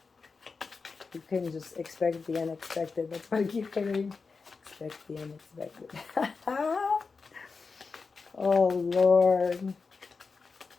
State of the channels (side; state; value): right; quieter; 4.6 dB